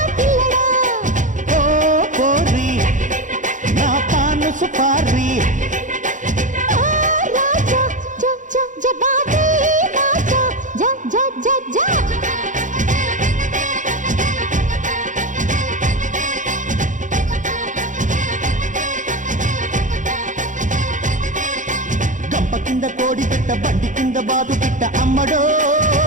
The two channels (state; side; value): late; left; 0.37 ms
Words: పిల్లడా ఓ కోరి నా పాను సుపారి రాజా జ జ జబాదే రాజా జ జ జ జ కింద కోడి పెట్ట బండి కింద బాదు పిట్ట అమ్మడో